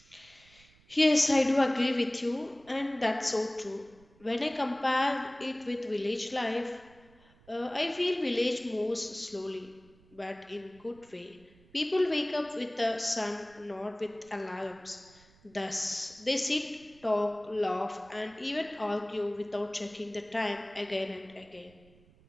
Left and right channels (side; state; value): right; noise; rumble, 28 dB below the sound